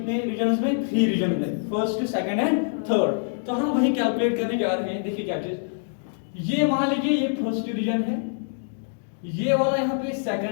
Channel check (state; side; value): silent; right; digital silence